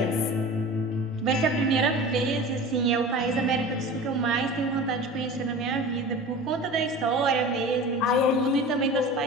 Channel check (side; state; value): both; normal; correlation 0.36